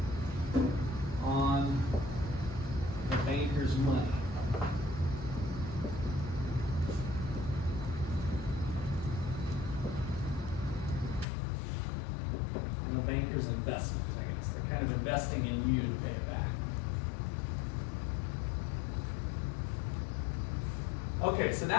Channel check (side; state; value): right; drops out; at 11.2 s